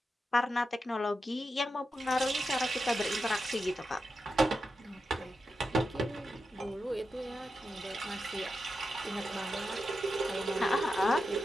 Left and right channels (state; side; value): normal; both; correlation 0.89